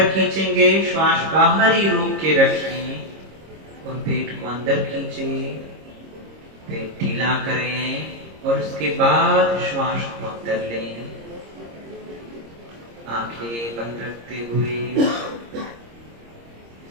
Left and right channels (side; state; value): left; late; 26 ms